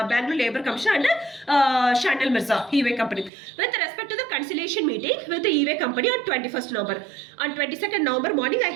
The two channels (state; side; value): drops out; left; at 3.3 s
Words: Labour Commissioner and Anand Mirza, e-way company, with respect to the conciliation meeting with the e-way company on 21st November. On 22nd November morning I